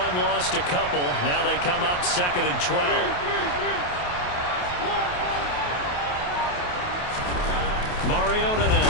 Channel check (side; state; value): right; late; 28 ms